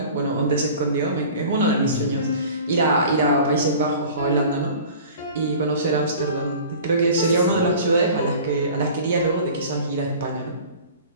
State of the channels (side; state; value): both; inverted; correlation -0.42